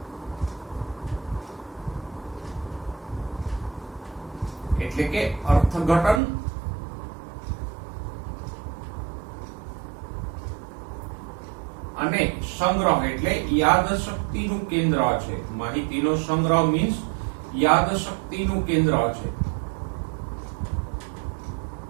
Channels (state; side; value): drops out; left; at 6.2 s